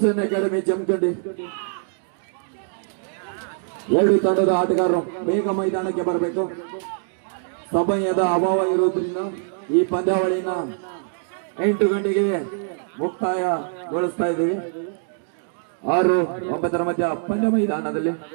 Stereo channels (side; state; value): left; silent; digital silence